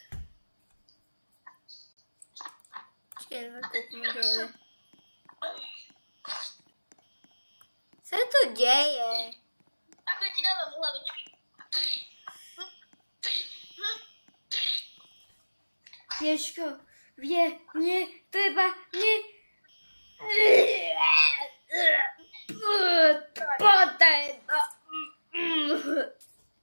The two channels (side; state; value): both; inverted; correlation -1.00